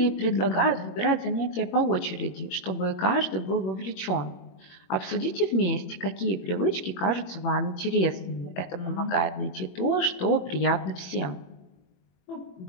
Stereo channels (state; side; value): late; right; 22 ms